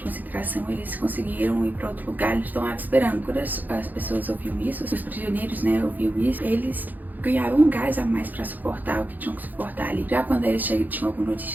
eles conseguiram ir pra outro lugar, eles estão lá esperando. Quando as pessoas ouviam isso, os prisioneiros, né, ouviam isso, eles ganhavam um gás a mais pra suportar o que tinham que suportar ali. Já quando eles tinham alguma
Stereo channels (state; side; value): late; left; 0.084 ms